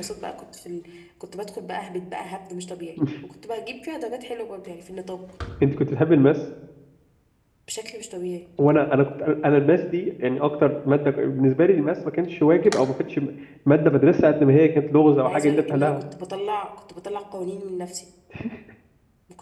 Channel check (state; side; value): identical; both; correlation 1.00